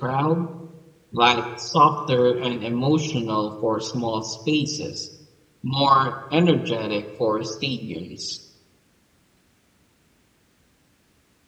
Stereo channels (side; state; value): both; identical; correlation 1.00